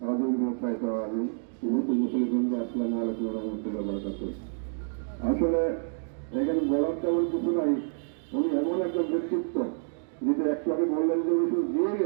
রহিম। আসলে এখানে বলার তেমন কিছু নাই। উনি এমন একটা ব্যক্তিত্ব যেটা একটু আগে বললেন যে উনি শুধু দিয়ে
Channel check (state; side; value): silent; left; digital silence